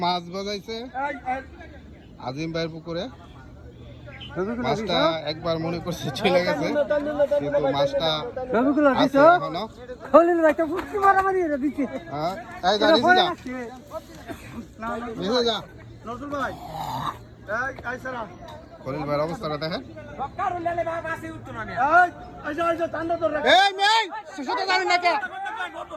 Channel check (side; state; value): both; identical; correlation 1.00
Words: মাছ বাজাইছে আজিম ভাইয়ের পুকুরে। মাছটা একবার মনে করছে চলে গেছে, কিন্তু মাছটা আছে এখনো। খলিল ভাই তো ফুটকি মারামারি এটা দিচ্ছে। হ্যাঁ, এই যা নিচে যা, নিচে যা। নজরুল ভাই এই সারা খলিল ভাইয়ের অবস্থাটা দেখেন। এই এই সুতো জানেন না কে?